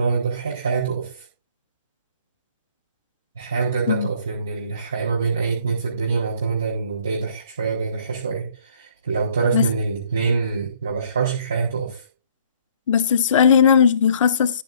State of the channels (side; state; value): both; inverted; correlation -0.61